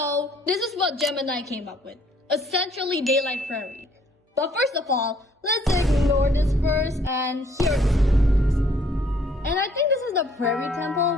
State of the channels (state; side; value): normal; both; correlation 0.62